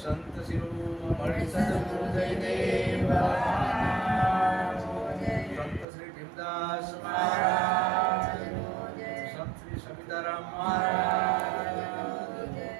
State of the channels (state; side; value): drops out; left; at 5.9 s